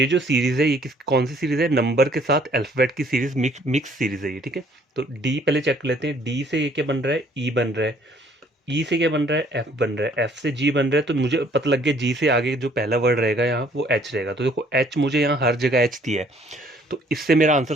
जो सीरीज है ये कौन सी सीरीज है, नंबर के साथ अल्फाबेट की सीरीज, मिक्स सीरीज है ये, ठीक है। तो डी पहले चेक कर लेते हैं। डी से ये क्या बन रहा है, ई बन रहा है। ई से क्या बन रहा है, एफ बन रहा है। एफ से जी बन रहा है। तो मुझे पता लग गया जी से आगे जो पहला वर्ड रहेगा यहाँ वो एच रहेगा। तो देखो एच मुझे यहाँ हर जगह एच दिया है, तो इससे मेरा आंसर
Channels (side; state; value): both; normal; correlation 0.60